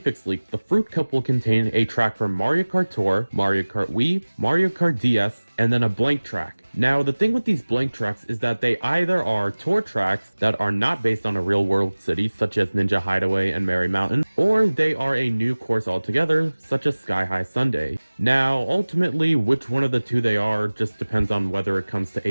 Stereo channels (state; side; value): inverted; both; correlation -1.00